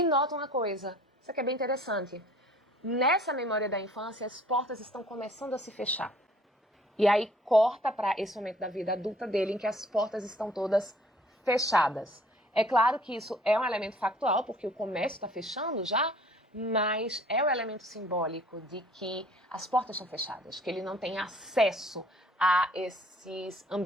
nota uma coisa, isso aqui é bem interessante. Nessa memória da infância, as portas estão começando a se fechar. E aí corta para esse momento da vida adulta dele, em que as portas estão todas fechadas. É claro que isso é um elemento factual, porque o comércio está fechando já, mas é o elemento simbólico de que as portas estão fechadas, que ele não tem acesso a esses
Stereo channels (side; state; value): both; normal; correlation 0.55